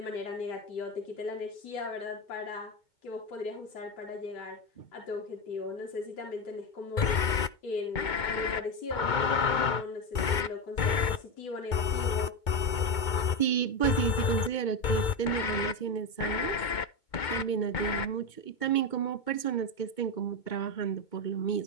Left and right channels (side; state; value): right; late; 2.2 ms